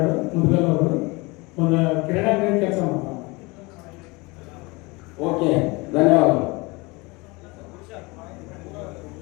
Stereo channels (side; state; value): right; quieter; 25.3 dB